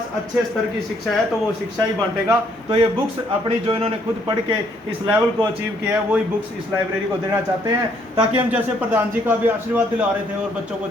अच्छे स्तर की शिक्षा है तो वो शिक्षा ही बांटेगा। तो ये बुक्स अपनी जो इन्होंने खुद पढ़ के इस लेवल को अचीव किया है वही बुक्स इस लाइब्रेरी को देना चाहते हैं, ताकि हम जैसे प्रधान जी का भी आशीर्वाद दिला रहे थे और बच्चों को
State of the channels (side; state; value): both; normal; correlation 0.68